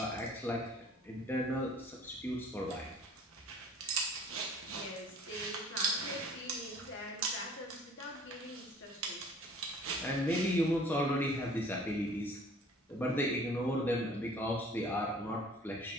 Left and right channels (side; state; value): both; normal; correlation 0.51